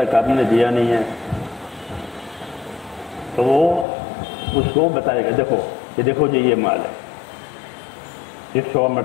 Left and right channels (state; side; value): drops out; right; at 3.9 s